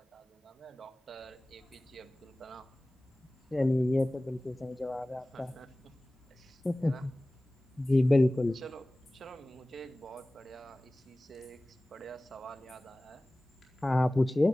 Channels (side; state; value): both; normal; correlation 0.98